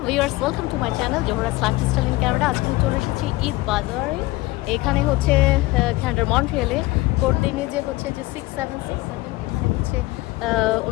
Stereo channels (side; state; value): right; quieter; 20.2 dB